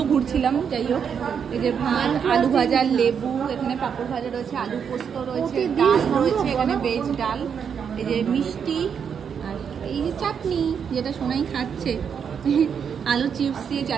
ঘুরছিলাম, যাই হোক। এই যে ভাত, আলু ভাজা, লেবু, এখানে পাঁপড় ভাজা রয়েছে, আলু পোস্ত রয়েছে, ডাল রয়েছে, এখানে ভেজ ডাল, এই যে মিষ্টি, আর এই যে চাটনি, যেটা সোনাই খাচ্ছে, আলু চিপস দিয়ে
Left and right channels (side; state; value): left; quieter; 7.2 dB